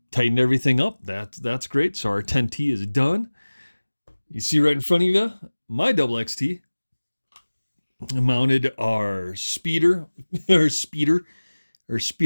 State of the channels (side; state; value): both; inverted; correlation -1.00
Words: tightened everything up. That's great. So our 10T is done. You see right in front of you, my double XT. Mounted our speeder